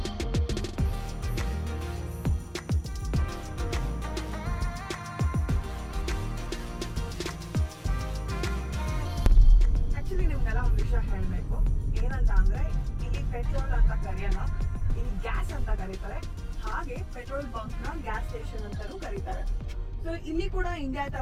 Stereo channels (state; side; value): identical; both; correlation 1.00